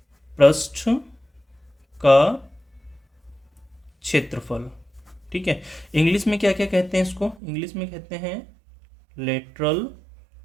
पृष्ठ का क्षेत्रफल। ठीक है, इंग्लिश में क्या क्या कहते हैं इसको, इंग्लिश में कहते हैं लेटरल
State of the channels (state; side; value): drops out; left; at 7.4 s